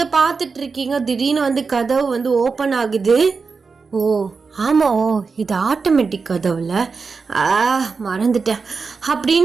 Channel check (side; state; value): left; quieter; 4.8 dB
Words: பார்த்துட்டு இருக்கீங்க. திடீர்னு வந்து கதவு வந்து ஓப்பன் ஆகுது. இது ஆட்டோமேட்டிக் கதவுல, மறந்துட்டேன்